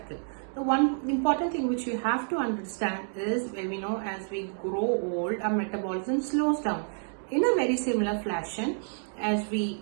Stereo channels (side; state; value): left; silent; 59 dB below the other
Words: The one important thing which you have to understand is, we know as we grow old, our metabolism slows down. In a very similar fashion, as we